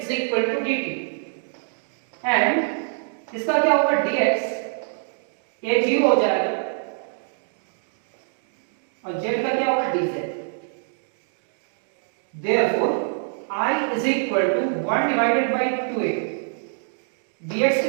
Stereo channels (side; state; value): left; silent; digital silence